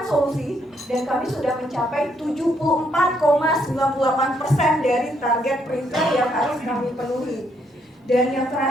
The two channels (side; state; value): both; normal; correlation 0.73